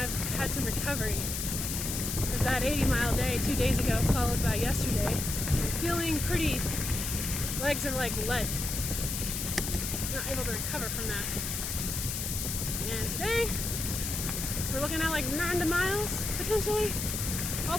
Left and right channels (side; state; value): left; noise; hiss, 3 dB below the sound